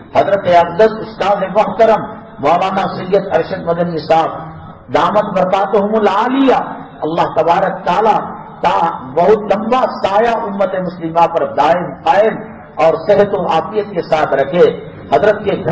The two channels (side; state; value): both; identical; correlation 1.00